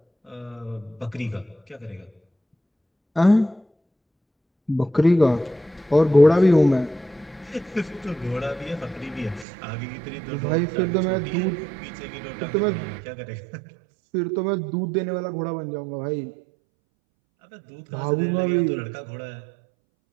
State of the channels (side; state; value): left; drops out; at 9.5 s